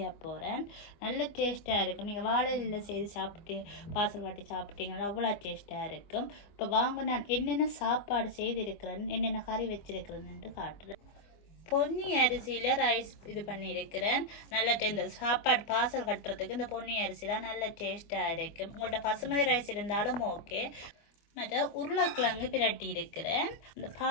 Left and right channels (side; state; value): right; late; 25 ms